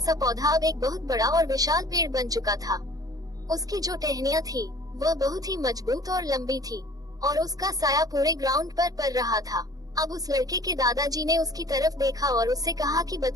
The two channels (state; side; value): late; left; 0.18 ms